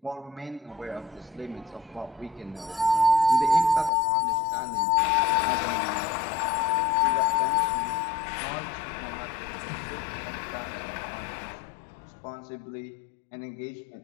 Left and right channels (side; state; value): right; drops out; at 3.9 s